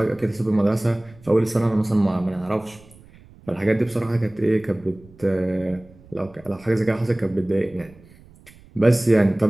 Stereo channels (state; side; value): noise; right; rumble, 25 dB below the sound